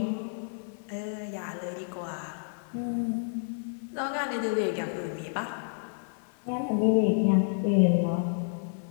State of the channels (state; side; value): silent; right; digital silence